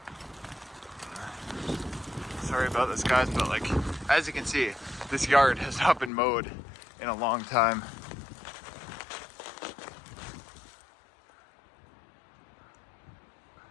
Sorry about this, guys, but like, as you can see, this yard has not been mowed in a long time.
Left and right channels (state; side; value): drops out; right; at 6.1 s